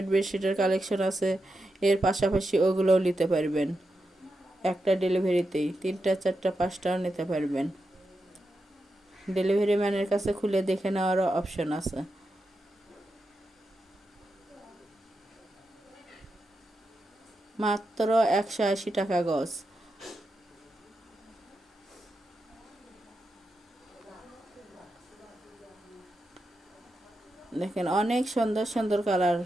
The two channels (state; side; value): normal; both; correlation 0.87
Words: বেডশিটের কালেকশন আছে। এর পাশাপাশি ওগুলোও নিতে পারবেন। একটা ডেলিভারিতেই 3টা 4টা 5টাও নিতে পারবেন। ডেলিভারি ম্যানের কাছে খুলে দেখে নেওয়ারও অপশন আছে। মাত্র 180 টাকা গজ। দেখেন, অনেক সুন্দর সুন্দর কালার